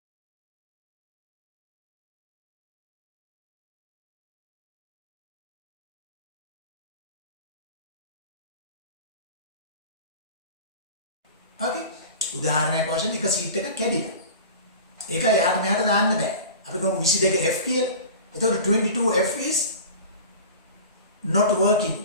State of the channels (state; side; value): inverted; both; correlation -0.36